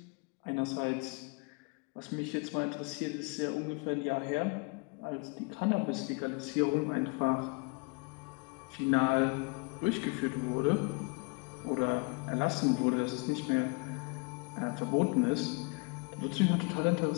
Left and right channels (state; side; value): quieter; right; 31.8 dB